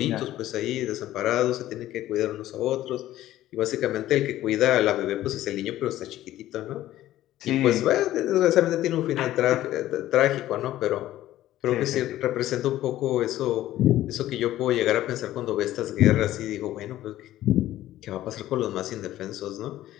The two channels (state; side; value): quieter; right; 14.1 dB